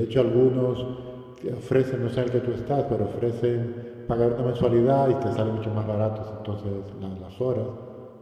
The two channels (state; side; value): identical; both; correlation 1.00